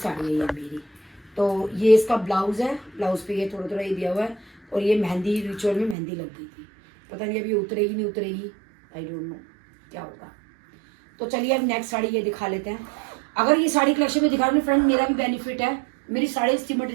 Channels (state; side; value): drops out; left; at 6.0 s